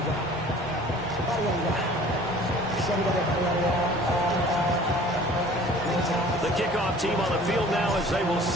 The kickoff team on the field now as they will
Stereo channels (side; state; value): both; normal; correlation 0.48